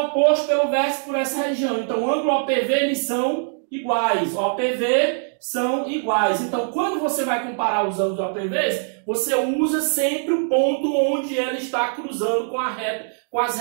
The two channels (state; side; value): silent; left; digital silence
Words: pelo vértice por essa região. Então, o ângulo OPV, eles são iguais. OPV são iguais. Então, quando você vai comparar os ângulos OPVs, você usa sempre o ponto onde ela está cruzando com as